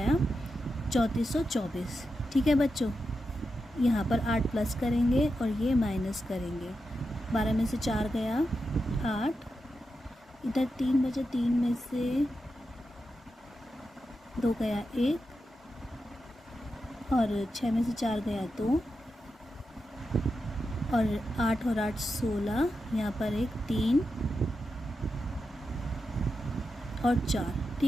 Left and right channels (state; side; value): normal; both; correlation 0.88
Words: 3424। ठीक है बच्चों, यहाँ पर 8 प्लस करेंगे और ये माइनस करेंगे। 12 में से 4 गया 8, इधर 3 बचे, 3 में से 2 गया 1, और 6 में से 4 गया 2, और 8 और 8 16, यहाँ पर एक 3 और 4।